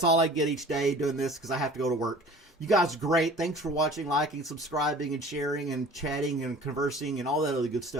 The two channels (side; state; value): both; normal; correlation 0.45